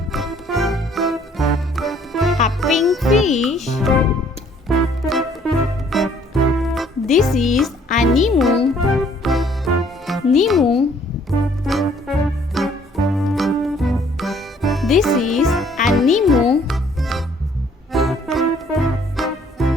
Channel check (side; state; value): both; normal; correlation 0.61